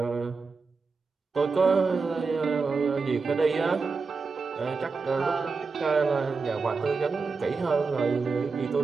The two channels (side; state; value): left; quieter; 4.5 dB